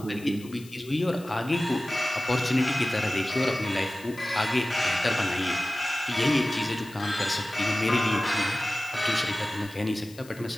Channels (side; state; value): left; noise; hiss, 21 dB below the sound